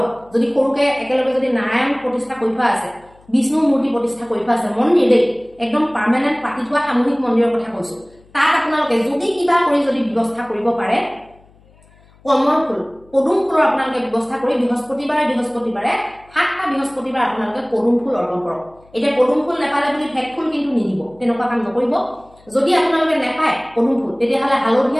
যদি সৰুকে একেলগে যদি নাৰায়ণ প্ৰতিষ্ঠা কৰি থোৱা আছে, বিষ্ণুৰ মূৰ্তি প্ৰতিষ্ঠা কৰি থোৱা আছে, মন্দিৰ দেই একদম পাৰ্মানেণ্ট পাতি থোৱা সামূহিক মন্দিৰৰ কথা কৈছো, তাত আপোনালোকে যদি কিবা কৰি যদি ব্যৱস্থা কৰিব পাৰে, কমল ফুল, পদুম ফুলৰ আপোনালোকে ব্যৱস্থা কৰি বৃহস্পতিবাৰে 7টা বৃহস্পতিবাৰ আপোনালোকে পদুম ফুল অৰ্পণ কৰক। এতিয়া পদুম ফুল নাপালে বুলি ভেট ফুল কিন্তু নিদিব, তেনেকুৱা কাম নকৰিব। যদি আপোনালোকে নাপায় পদুম ফুল, তেতিয়াহ'লে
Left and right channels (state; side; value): noise; left; hum, 29 dB below the sound